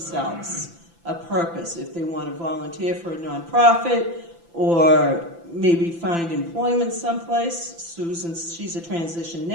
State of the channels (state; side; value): late; left; 5.9 ms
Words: a purpose, if they want to volunteer for a nonprofit or maybe find employment someplace. Susan, she's a transition